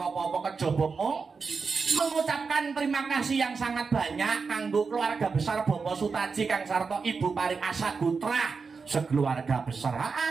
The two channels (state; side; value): quieter; left; 5.0 dB